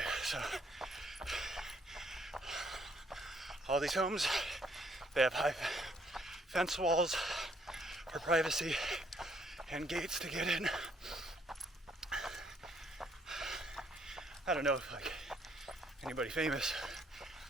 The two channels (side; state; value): both; normal; correlation 0.67